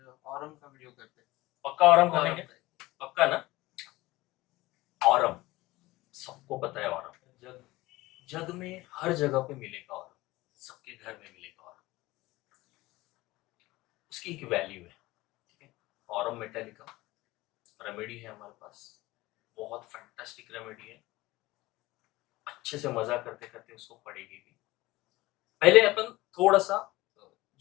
ऑरम का वीडियो करते हैं। पक्का ऑरम करेंगे? पक्का ना? ऑरम सबको पता है। ऑरम जग जग में हर जगह पे मिलेगा। ऑरम सबके घर में मिलेगा। ऑरम उसकी एक वैल्यू है, ठीक है। ऑरम मेटालिका रेमेडी है हमारे पास, बहुत फैंटास्टिक रेमेडी है। अच्छे से मजा करते करते उसको पढ़ेगी भी। पहले अपन थोड़ा सा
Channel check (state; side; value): quieter; right; 19.3 dB